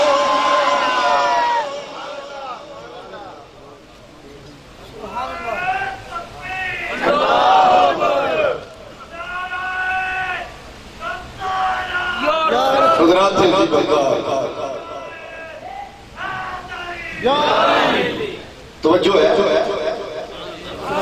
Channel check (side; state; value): both; identical; correlation 1.00